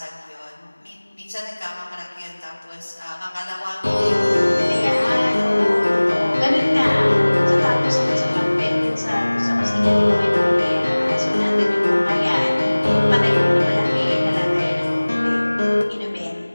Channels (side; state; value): both; inverted; correlation -1.00